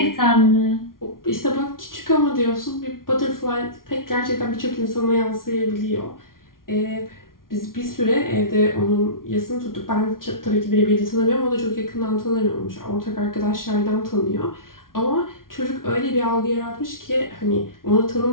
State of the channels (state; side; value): late; right; 0.92 ms